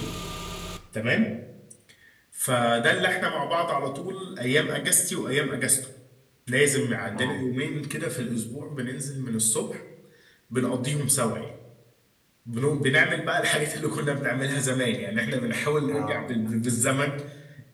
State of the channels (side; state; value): both; identical; correlation 1.00